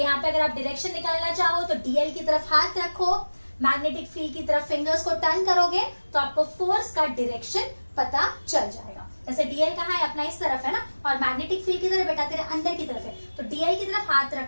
पे अगर आप डायरेक्शन निकालना चाहो तो डीएल की तरफ हाथ रखो, मैग्नेटिक फील्ड की तरफ फिंगर्स को टर्न करोगे तो आपको फोर्स का डायरेक्शन पता चल जाएगा। जैसे डीएल कहाँ है, अपना इस तरफ है ना, और मैग्नेटिक फील्ड की तरफ बेटा तेरे अंदर की तरफ है, तो डीएल की तरफ हाथ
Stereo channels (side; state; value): both; inverted; correlation -1.00